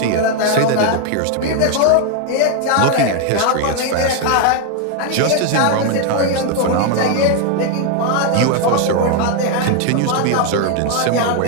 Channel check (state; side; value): different; both; correlation 0.01